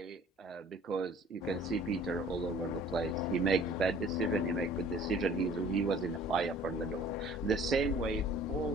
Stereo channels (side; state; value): both; normal; correlation 0.52